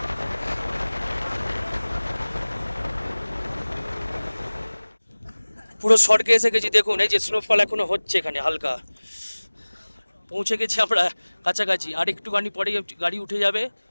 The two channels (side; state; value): both; inverted; correlation -1.00